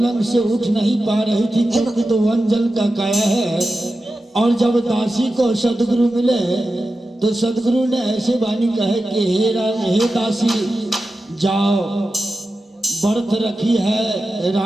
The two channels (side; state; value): both; normal; correlation 0.92